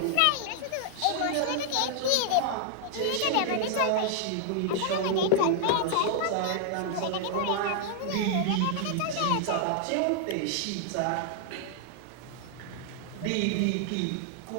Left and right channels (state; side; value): different; both; correlation -0.01